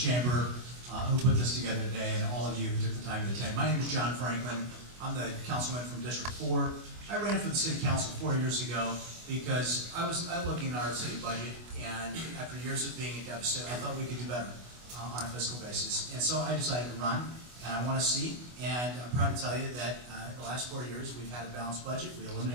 who put this together today, and all of you who took the time to attend. My name is John Franklin. I'm the councilman from District 4. I ran for the city council 4 years ago because I was looking at our city budget, and after years of being in deficit, I thought we could do better on a fiscal basis. And so I decided to run, and I want to see, and I'm proud to tell you that the last 4 years we've had a balanced budget. We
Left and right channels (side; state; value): left; late; 24 ms